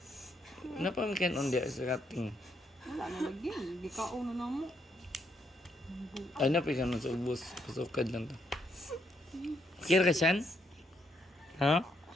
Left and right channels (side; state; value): both; normal; correlation 0.75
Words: Napamikan on diya sa kating. Wala na lagi. Di kaon na mo. Ay, napikan nun sa ubos. Pasukad lang ta. Okay na ka siyan? Ha?